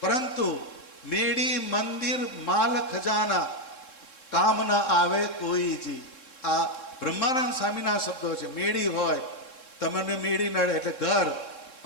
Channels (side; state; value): right; late; 3.7 ms